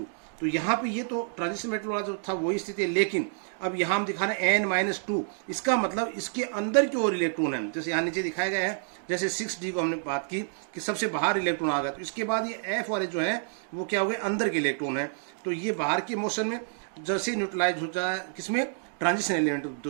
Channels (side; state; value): left; silent; digital silence